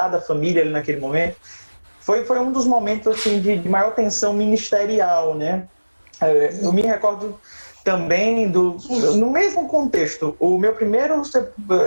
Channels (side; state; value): both; inverted; correlation -1.00